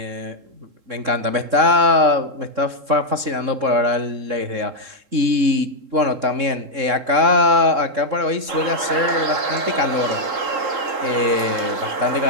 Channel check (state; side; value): late; left; 3.6 ms